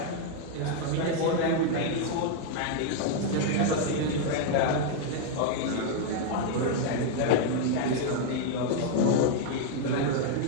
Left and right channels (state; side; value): different; both; correlation 0.00